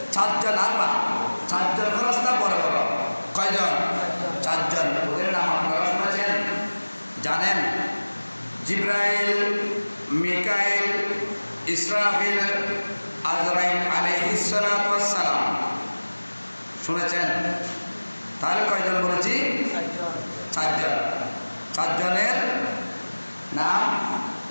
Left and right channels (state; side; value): inverted; both; correlation -1.00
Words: 4 জন আল্লাহ, 4 জন ফেরেশতা বড় বড়। কয়জন? 4 জন। ওদের নাম আপনারা শুনেছেন, জানেন? জিব্রাইল, মিকাইল, ইসরাফিল, আজরাইল আলাইহিস সালাম। শুনেছেন? তাহলে কয়জন বলেছি? 4 জন। 4 জনের নাম